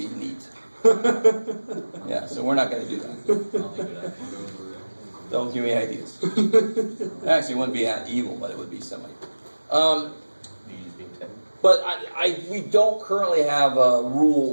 neat. Yeah, so we're not going to do that. Don't give me ideas. Actually, it wouldn't be evil, but it would be semi. But we don't currently have a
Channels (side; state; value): both; inverted; correlation -1.00